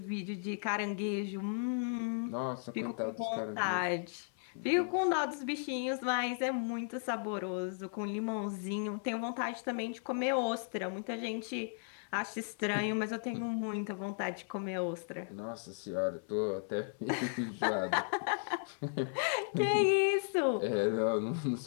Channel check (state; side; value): silent; right; 54 dB below the other